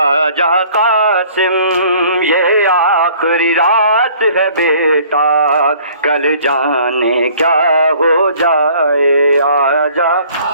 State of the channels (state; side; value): inverted; both; correlation -0.54